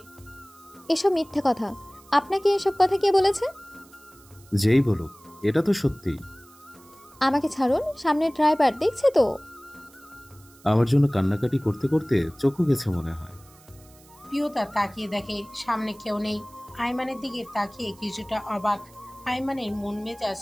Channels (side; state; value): right; noise; hiss, 26 dB below the sound